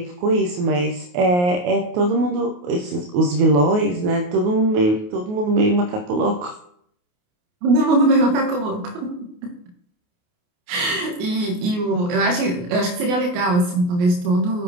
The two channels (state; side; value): late; left; 28 ms